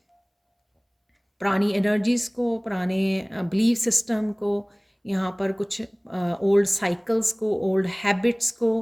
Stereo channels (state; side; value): identical; both; correlation 1.00